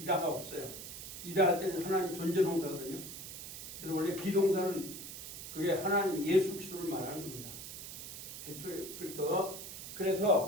이다가 없어요. 이다 할 때는 하나님 존재 동사거든요. 그래서 원래 비동사는 그게 하나님 예수 그리스도를 말하는 겁니다. 대초에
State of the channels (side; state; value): right; noise; hiss, 10 dB below the sound